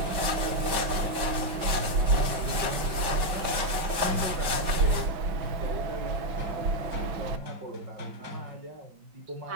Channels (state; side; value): late; left; 5.2 ms